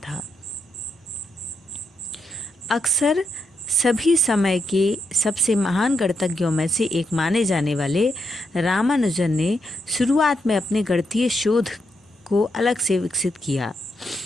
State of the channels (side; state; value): both; normal; correlation 0.81